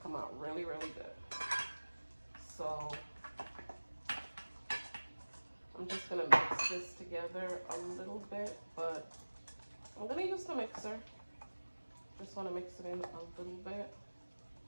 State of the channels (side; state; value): both; inverted; correlation -1.00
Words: come out really, really good. So, I'm just gonna mix this together a little bit, but I'm gonna use the mixer. Just wanna mix it in a little bit.